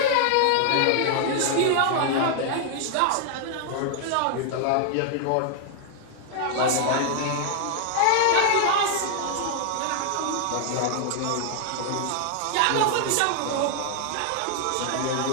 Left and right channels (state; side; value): different; both; correlation 0.00